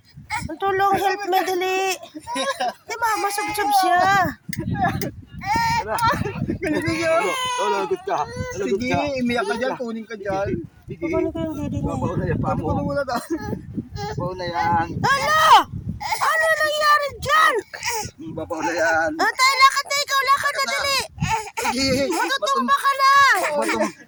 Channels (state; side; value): identical; both; correlation 1.00